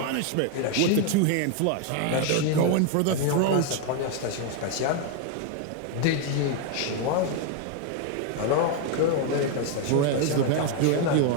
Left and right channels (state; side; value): different; both; correlation 0.01